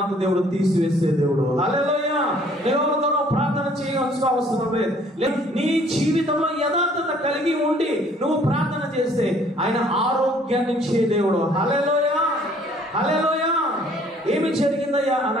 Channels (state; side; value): normal; both; correlation 0.59